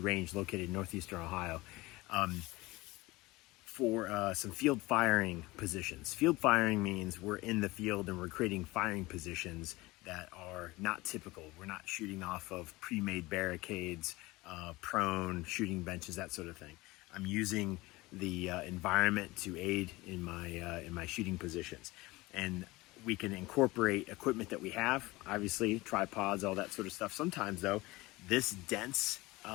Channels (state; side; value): quieter; right; 20.9 dB